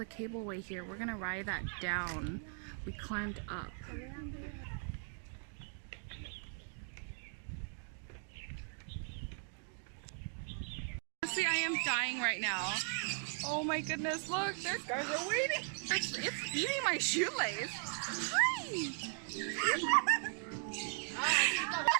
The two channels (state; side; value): silent; left; 52 dB below the other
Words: cableway here. We're gonna ride that down. We climbed up. Honestly, I am dying right now. Oh my goodness, look, they're waiting. It's eating my shoelace. Hi!